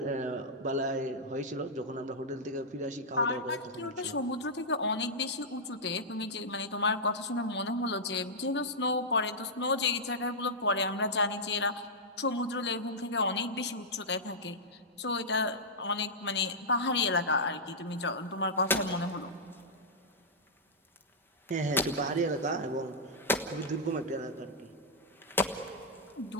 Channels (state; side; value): normal; both; correlation -0.09